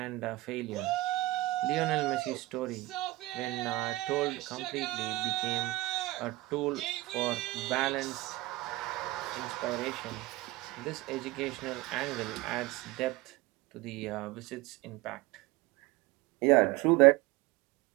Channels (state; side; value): quieter; left; 19.6 dB